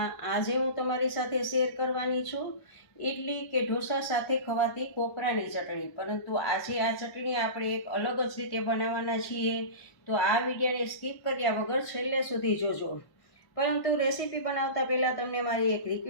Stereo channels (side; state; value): right; late; 1.1 ms